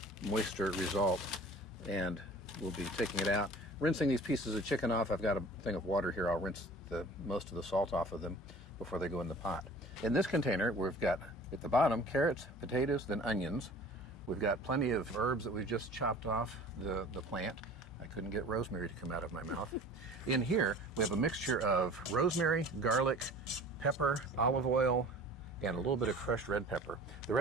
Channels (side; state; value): both; normal; correlation 0.45